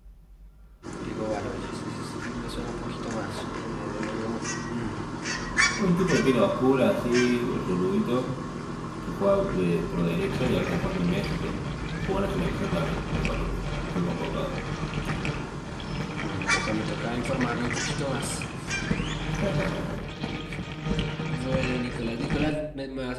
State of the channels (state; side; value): identical; both; correlation 1.00